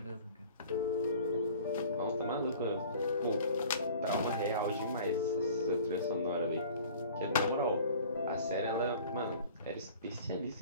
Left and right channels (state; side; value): inverted; both; correlation -0.45